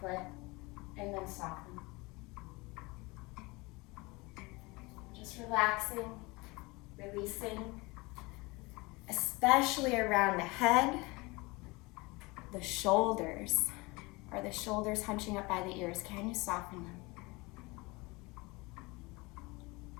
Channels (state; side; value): quieter; right; 24.6 dB